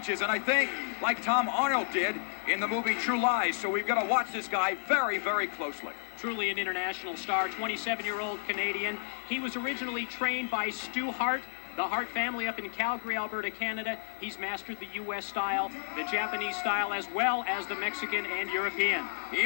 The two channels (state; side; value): silent; right; 57 dB below the other